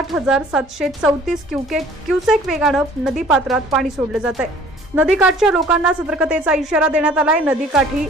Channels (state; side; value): normal; both; correlation 0.52